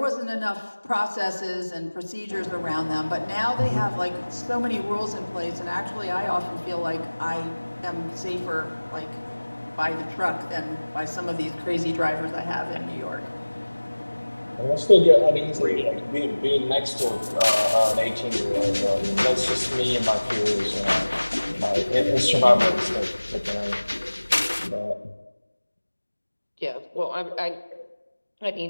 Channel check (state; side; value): inverted; both; correlation -1.00